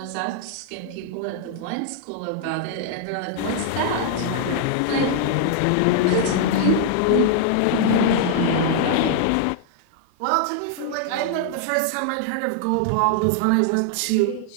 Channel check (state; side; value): different; both; correlation -0.01